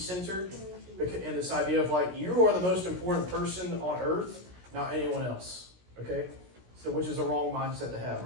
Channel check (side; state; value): left; late; 17 ms